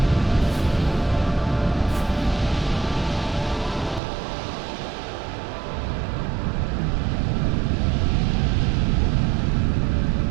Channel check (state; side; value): drops out; left; at 4.0 s